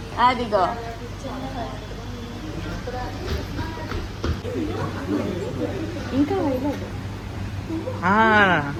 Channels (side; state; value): both; identical; correlation 1.00